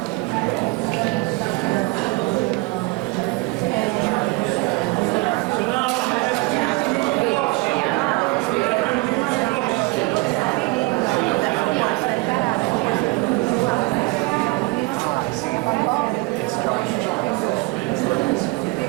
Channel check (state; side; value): quieter; left; 24.0 dB